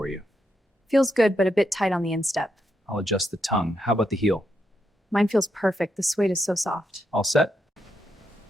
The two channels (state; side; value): normal; both; correlation 0.82